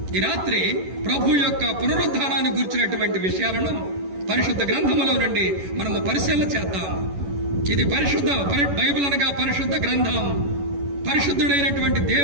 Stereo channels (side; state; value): left; late; 11 ms